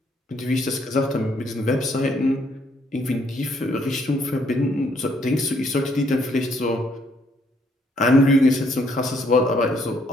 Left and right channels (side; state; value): both; normal; correlation 0.69